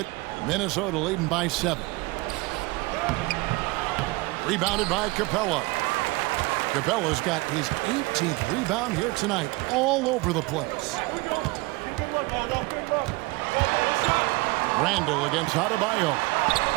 Minnesota leading by 7. Rebounded by Capella. Capella's got his 18th rebound here tonight, all over the place. Randall against Adebayo.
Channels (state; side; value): quieter; left; 23.6 dB